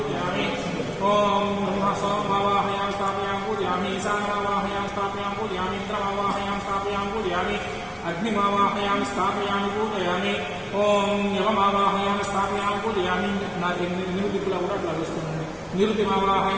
ఓం బ్రహ్మసోమావాహయామి స్థాపయామి పూజయామి ఈశానమావాహయామి స్థాపయామి పూజయామి ఇంద్రమావాహయామి స్థాపయామి పూజయామి అగ్నిమావాహయామి స్థాపయామి పూజయామి ఓం యమమావాహయామి స్థాపయామి పూజయామి. నాకు 8 దిక్కులా కూడా అట్లా వేస్తున్నాను.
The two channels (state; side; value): identical; both; correlation 1.00